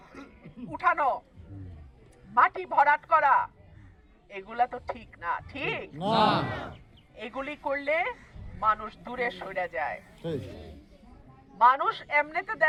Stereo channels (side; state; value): both; identical; correlation 1.00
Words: উঠানো, মাটি ভরাট করা, এগুলা তো ঠিক না। ঠিক না, এগুলি করলে মানুষ দূরে সরে যায়। মানুষ এমনিতে